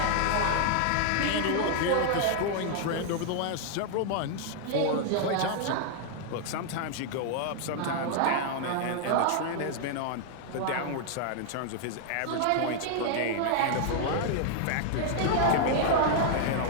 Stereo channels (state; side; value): different; both; correlation 0.00